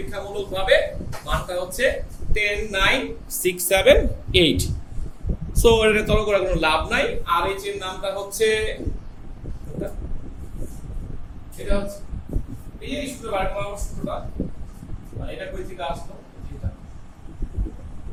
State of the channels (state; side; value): identical; both; correlation 1.00